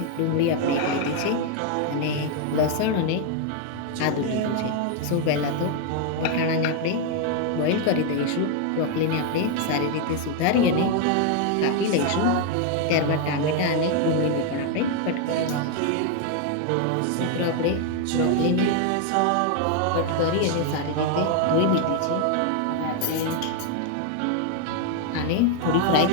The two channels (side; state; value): both; different; correlation 0.00